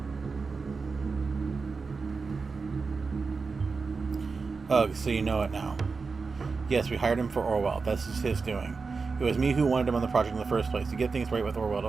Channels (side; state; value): left; quieter; 4.6 dB